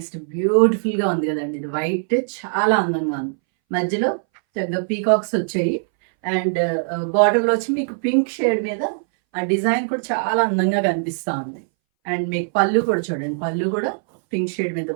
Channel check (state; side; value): silent; left; 63 dB below the other